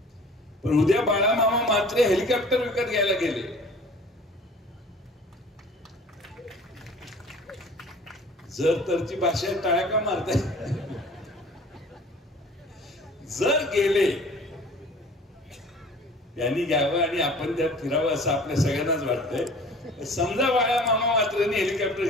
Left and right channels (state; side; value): normal; both; correlation 0.46